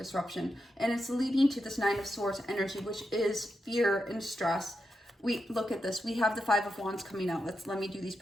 And it's leading to this Nine of Swords energy, which is fear and stress. We look at this. We have the Five of Wands coming out. Let me do these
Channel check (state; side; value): normal; both; correlation 0.87